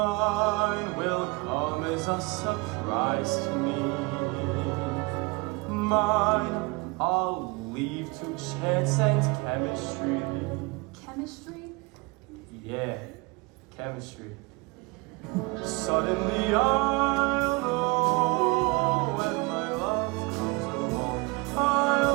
will come as a surprise to me. Mine I'll leave to chance and chemistry. Chemistry? Yeah, chemistry. Suddenly I'll know when my love comes along.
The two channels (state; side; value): quieter; left; 26.5 dB